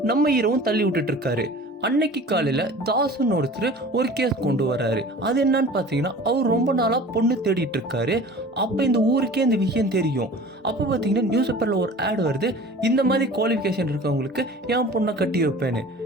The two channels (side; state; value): both; normal; correlation 0.42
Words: நம்ம ஹீரோவும் தள்ளி விட்டுட்டு இருக்காரு. அன்னைக்கு காலையில் தாசுன்னு ஒருத்தர் ஒரு கேஸ் கொண்டு வர்றாரு. அது என்னன்னு பார்த்தீங்கன்னா, அவர் ரொம்ப நாளாக பொண்ணு தேடிட்டு இருக்காரு. அப்போ இந்த ஊருக்கே இந்த விஷயம் தெரியும். அப்போ பார்த்தீங்கன்னா நியூஸ் பேப்பரில் ஒரு ஆட் வருது, இந்த மாதிரி குவாலிஃபிகேஷன் இருக்கவங்களுக்கு என் பொண்ணை கட்டி வைப்பேன்னு.